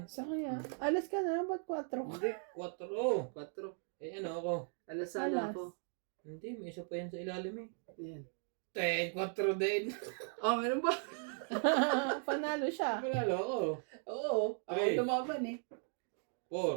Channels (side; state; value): left; silent; 53 dB below the other